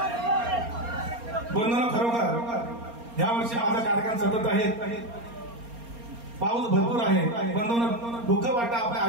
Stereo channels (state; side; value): late; left; 4.3 ms